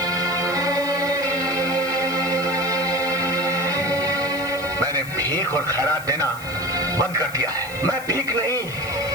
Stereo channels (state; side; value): noise; left; hiss, 17 dB below the sound